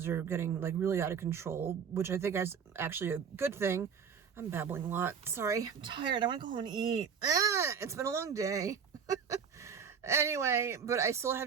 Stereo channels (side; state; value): left; quieter; 6.7 dB